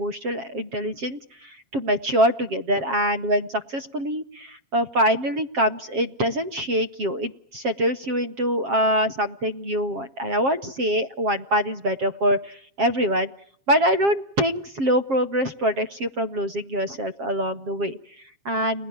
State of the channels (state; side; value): late; left; 7.4 ms